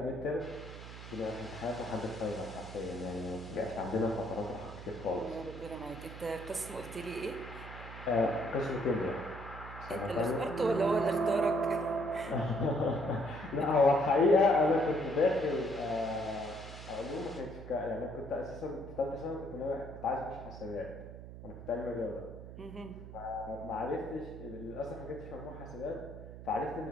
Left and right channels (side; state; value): right; noise; hum, 12 dB below the sound